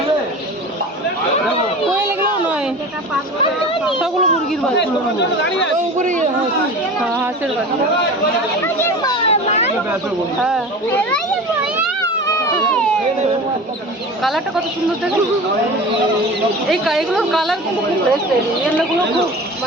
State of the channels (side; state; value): both; normal; correlation 0.35